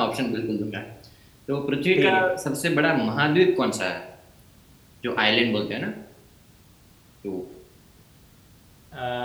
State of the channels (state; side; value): identical; both; correlation 1.00